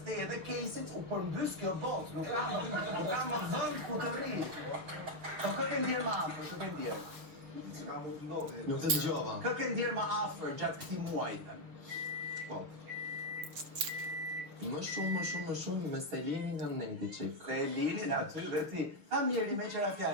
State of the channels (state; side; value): late; left; 6.7 ms